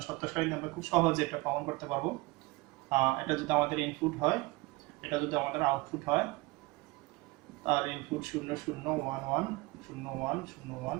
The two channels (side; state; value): left; quieter; 23.0 dB